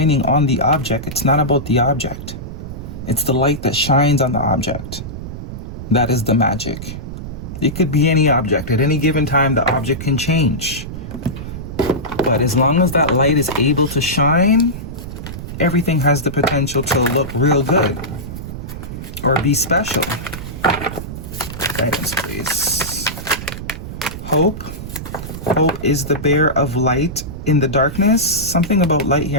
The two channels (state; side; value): noise; right; rumble, 9 dB below the sound